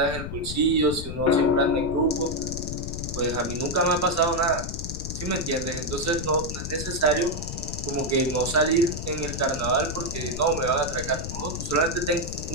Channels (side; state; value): left; noise; rumble, 6 dB below the sound